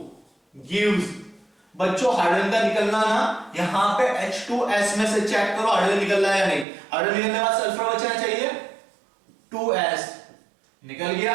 गिव्स, बच्चों हाइड्रोजन का निकलना ना, यहां पे H2S में से चेक करो हाइड्रोजन निकल रहा है या नहीं। हाइड्रोजन निकलने के बाद सल्फर बचना चाहिए 2S, निकल गया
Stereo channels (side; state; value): left; drops out; at 6.7 s